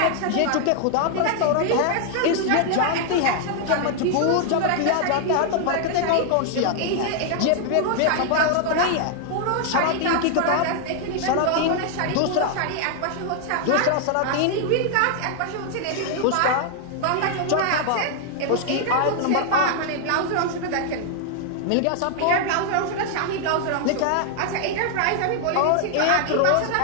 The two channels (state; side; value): different; both; correlation 0.00